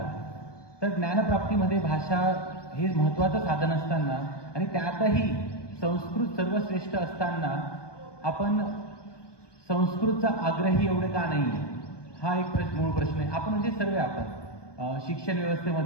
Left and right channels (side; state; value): right; late; 1.2 ms